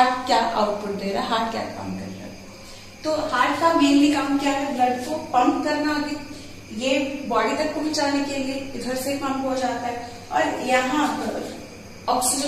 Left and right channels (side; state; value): both; identical; correlation 1.00